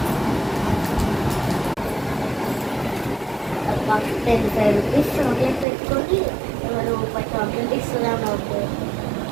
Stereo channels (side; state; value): left; drops out; at 5.7 s